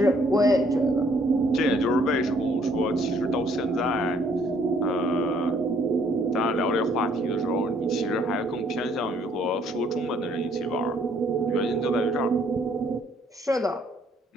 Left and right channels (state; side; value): normal; both; correlation 0.64